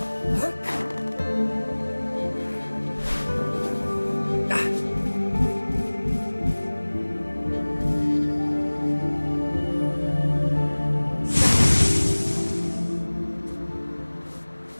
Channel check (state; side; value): inverted; both; correlation -1.00